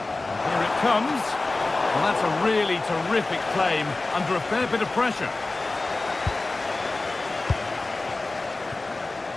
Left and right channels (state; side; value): quieter; right; 3.2 dB